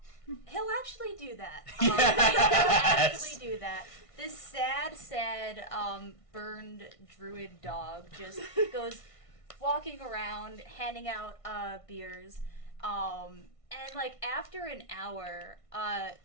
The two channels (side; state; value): right; late; 1.5 ms